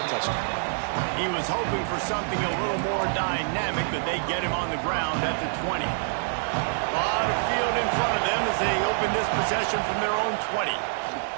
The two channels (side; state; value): left; silent; digital silence